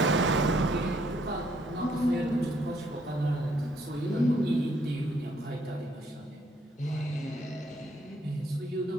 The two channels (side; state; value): both; normal; correlation 0.69